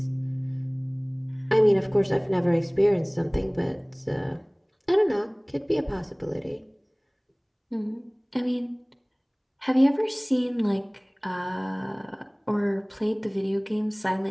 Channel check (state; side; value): identical; both; correlation 1.00